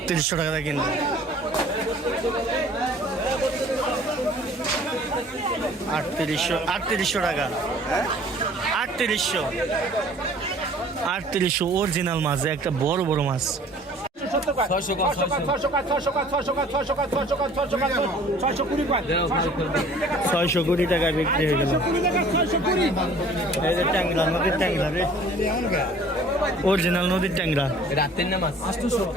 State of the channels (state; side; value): normal; both; correlation 0.51